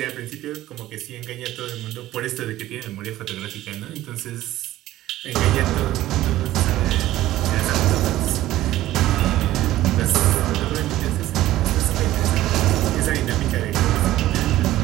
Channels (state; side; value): quieter; left; 15.0 dB